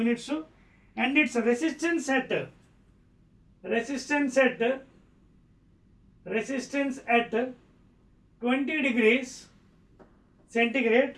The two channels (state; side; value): identical; both; correlation 1.00